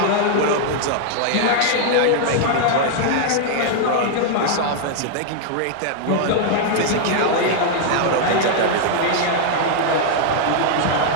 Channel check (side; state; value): both; different; correlation 0.00